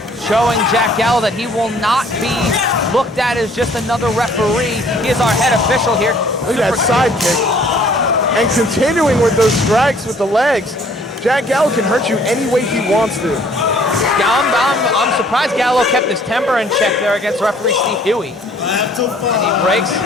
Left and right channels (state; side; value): normal; both; correlation 0.58